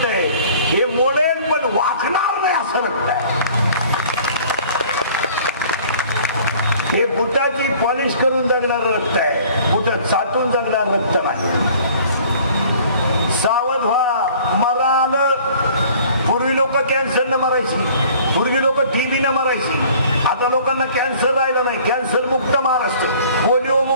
आहे. हे मोडेल पण वाकणार नाही असं रक्त आहे. हे बुटाची पॉलिश करून जगणार रक्त आहे. बुट चाटून जगणार रक्त नाही. सावध व्हा. मरा आलं. पूर्वी लोक कॅन्सरनं मरायची, पूर्वी लोक टीबीनं मरायची. आता लोकांना कॅन्सर राहिलं नाही. कॅन्सर मुक्त महाराष्ट्र, पोलिओ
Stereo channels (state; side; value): inverted; both; correlation -0.51